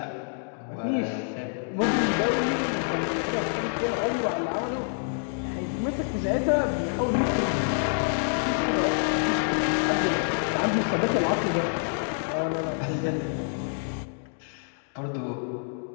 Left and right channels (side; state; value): right; silent; digital silence